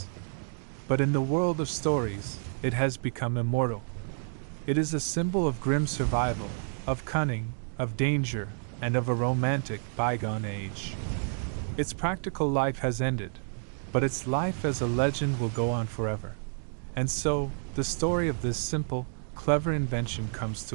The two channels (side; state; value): left; silent; 58 dB below the other